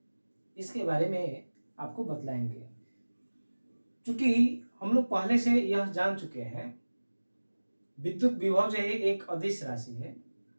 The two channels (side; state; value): both; inverted; correlation -1.00